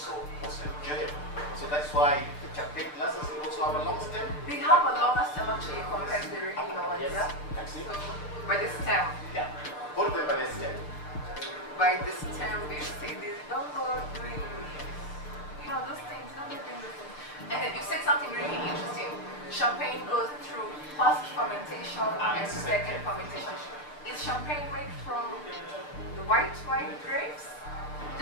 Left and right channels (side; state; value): right; late; 6.7 ms